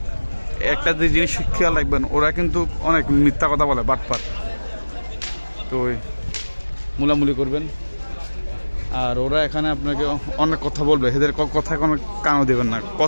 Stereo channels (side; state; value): both; inverted; correlation -1.00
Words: একটা যে জিনিস খেয়াল রাখবেন, ওরা কিন্তু অনেক মিথ্যা কথা বলে, বাটপাট। তো ওই মুলামুলি করবেন। আর ওরা এখানে আপনাকে অনেক কথা বলবে, এদের কথা কোনো কানও দেবেন না।